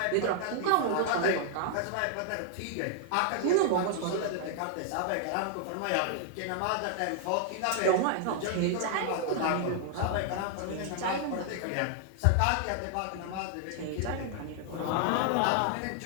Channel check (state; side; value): different; both; correlation 0.00